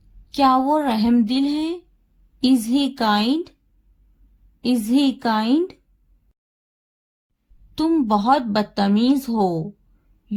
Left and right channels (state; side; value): identical; both; correlation 1.00